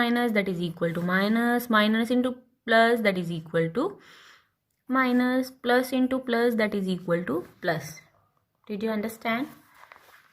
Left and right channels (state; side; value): identical; both; correlation 1.00